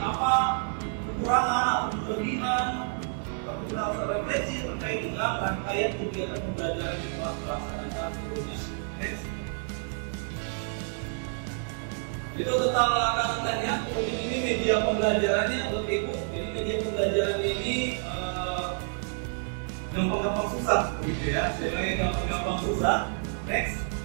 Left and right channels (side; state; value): left; silent; 59 dB below the other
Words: kekurangan atau kelebihan. Kita harus refleksi terkait dengan rangkaian kegiatan pembelajaran yang telah dilaksanakan sebelumnya. Next. Itu tentang langkah tanya. Kemudian ini media pembelajarannya untuk Ibu. Jadi media pembelajaran ini gampang-gampang susah, begitu ya. Sebenarnya gampang-gampang susah. Next.